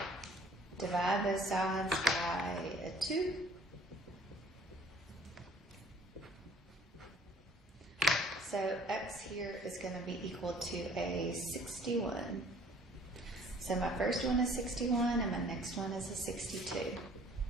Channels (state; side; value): normal; both; correlation 0.55